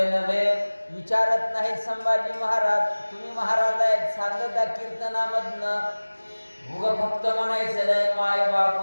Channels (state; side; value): inverted; both; correlation -1.00